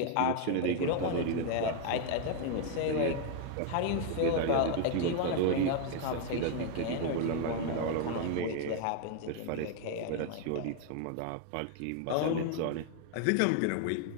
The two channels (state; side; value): different; both; correlation 0.01